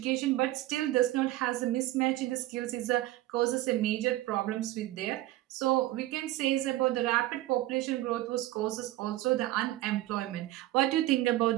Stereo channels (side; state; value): left; quieter; 16.1 dB